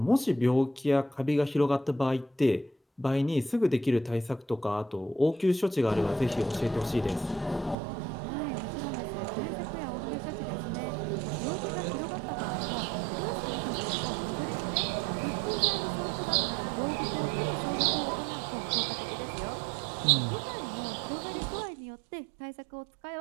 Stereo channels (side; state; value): left; drops out; at 7.8 s